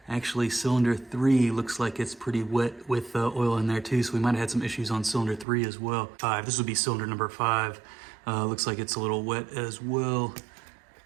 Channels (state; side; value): drops out; left; at 5.5 s